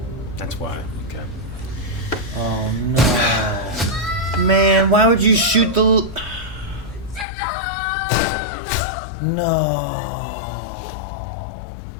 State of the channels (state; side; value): drops out; right; at 7.2 s